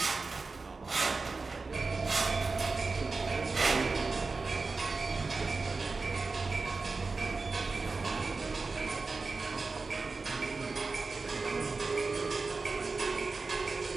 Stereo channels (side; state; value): left; quieter; 4.0 dB